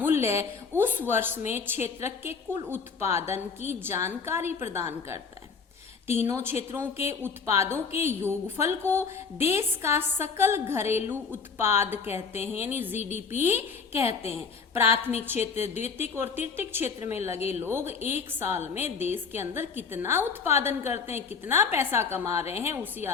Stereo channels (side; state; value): right; quieter; 5.4 dB